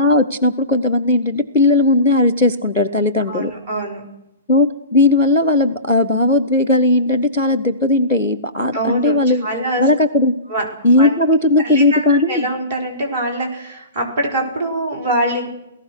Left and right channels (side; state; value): both; inverted; correlation -0.31